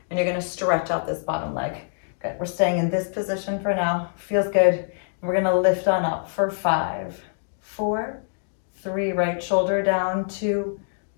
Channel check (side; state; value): right; silent; digital silence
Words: and you're gonna stretch out this bottom leg. Good, we're staying in this position for now. Feels good. And we're gonna lift on up for 5, 4, 3, right shoulder down, 2,